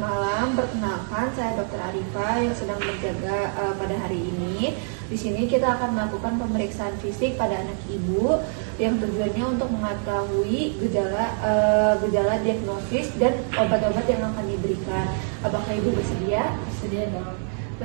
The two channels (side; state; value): left; silent; 57 dB below the other